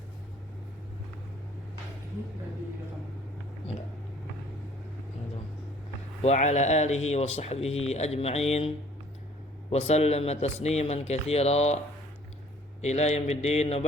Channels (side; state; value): both; normal; correlation 0.56